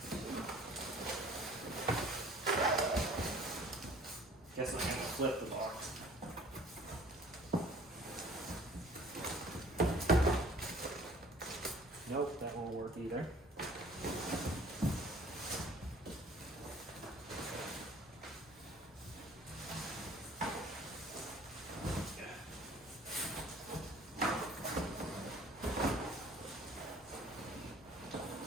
guess I'm gonna flip the box. Nope, that won't work either.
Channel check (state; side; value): normal; both; correlation 0.52